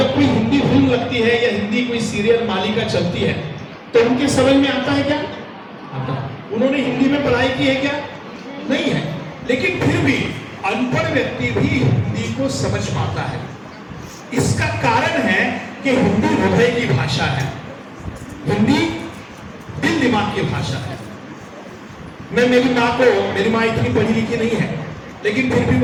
कोई हिंदी फिल्म लगती है या हिंदी कोई सीरियल मालिका चलती है तो उनके समझ में आता है क्या? आता है। उन्होंने हिंदी में पढ़ाई की है क्या? नहीं है, लेकिन फिर भी अनपढ़ व्यक्ति भी हिंदी को समझ पाता है। इसका कारण है कि हिंदी हृदय की भाषा है, हिंदी दिल दिमाग की भाषा है। मेरी माँ इतनी पढ़ी लिखी नहीं है, लेकिन फिर भी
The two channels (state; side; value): identical; both; correlation 1.00